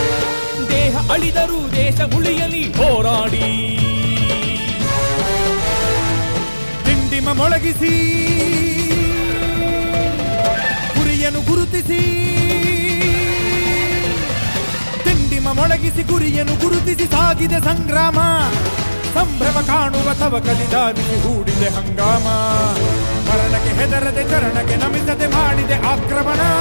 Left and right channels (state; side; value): inverted; both; correlation -1.00